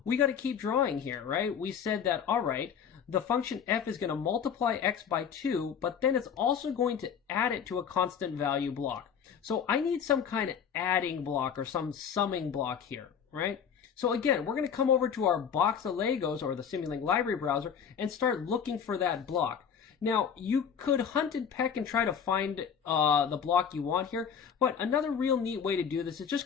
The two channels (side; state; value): right; quieter; 7.5 dB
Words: we got to keep drawing here, right? We said that, all right, the function f is going to multiply x by 2, but then it's also going to add it to a constant value block. So I need some kind of adding block or some summing block here, right? So again, we're going to come over to our box of Legos or the Simulink library browser and start looking for that block. Now, you could hunt and peck and try to find the block you want here, but another real neat way to do this is